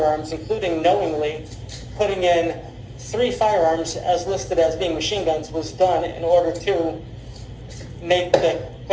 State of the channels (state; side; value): identical; both; correlation 1.00